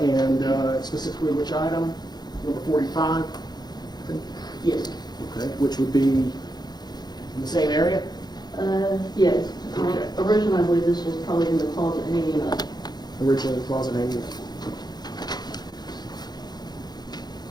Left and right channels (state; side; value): late; right; 0.20 ms